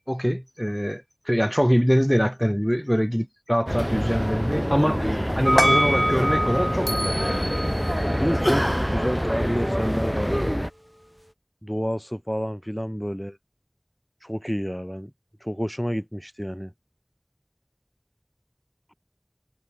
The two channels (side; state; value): both; identical; correlation 1.00